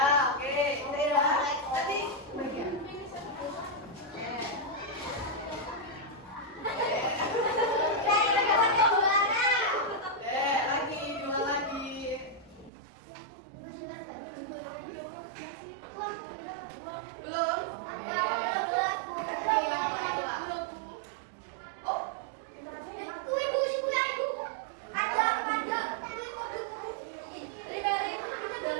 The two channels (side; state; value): left; drops out; at 12.7 s